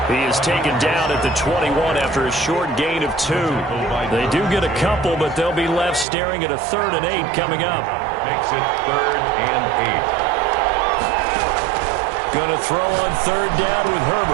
He is taken down at the 21 after a short gain of 2. They do get a couple, but they'll be left staring at a 3rd and 8 coming up. Makes it 3rd and 8. Going to throw on third down with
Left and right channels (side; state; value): left; drops out; at 6.1 s